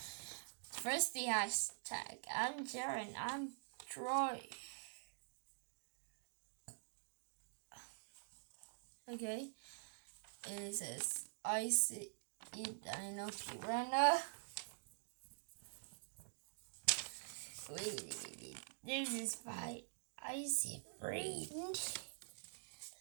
First the hashtag. I'm Jaren. I'm Troy. Okay. And it says, I see it. I know Piranha. Wait. This is my icy friend.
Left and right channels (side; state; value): left; silent; digital silence